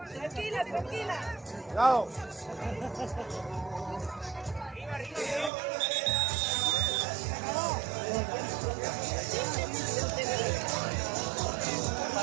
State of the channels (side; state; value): left; drops out; at 5.5 s